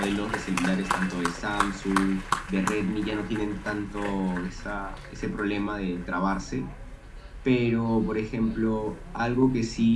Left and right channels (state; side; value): identical; both; correlation 1.00